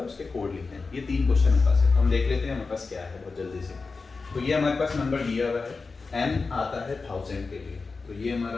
उसके कोड लिखते हैं। ये 3 क्वेश्चन हमारे पास है, हम देख लेते हैं हमारे पास क्या है बहुत जल्दी से। तो ये हमारे पास नंबर दिया हुआ है, n आता है 1000 के लिए, तो ये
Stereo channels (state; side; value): quieter; right; 4.2 dB